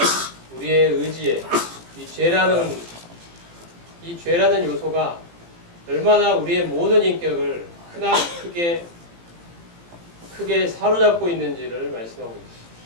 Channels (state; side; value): late; left; 18 ms